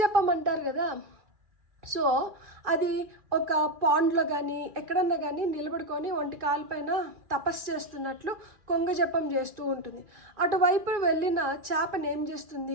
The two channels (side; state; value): left; late; 2.4 ms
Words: జపమంటారు కదా. సో అది ఒక పాండ్లో కానీ ఎక్కడన్నా కానీ నిలబడుకొని ఒంటి కాలు పైన తపస్సు చేస్తున్నట్లు కొంగ జపం చేస్తూ ఉంటుంది. అటువైపు వెళ్ళిన చేపను ఏం